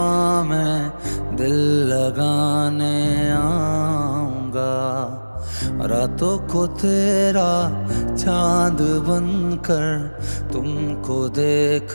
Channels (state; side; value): inverted; both; correlation -1.00